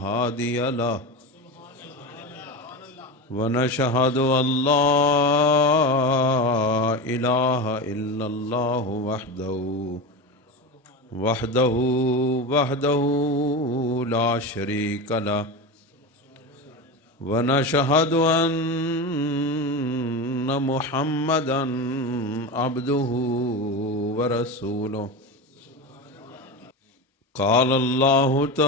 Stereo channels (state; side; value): normal; both; correlation 0.22